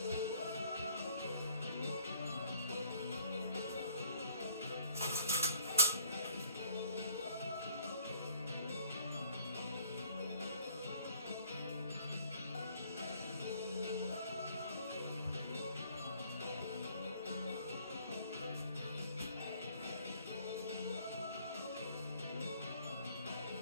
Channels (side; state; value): both; inverted; correlation -0.60